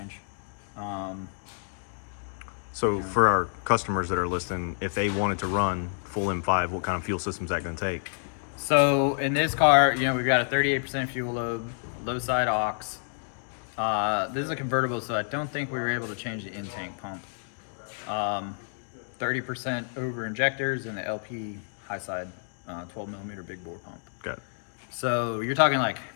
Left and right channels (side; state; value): right; silent; digital silence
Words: So for our customers that are listening, if they wanted to run full M5, what kind of fuel system is that going to take? So in this car, you know, we've got a 38% fuel load, low side aux. This is a convertible, so I don't think we were able to change the in-tank pump. 30% over injectors and the LP high side 12 millimeter big bore pump. Got it. So you're talking like,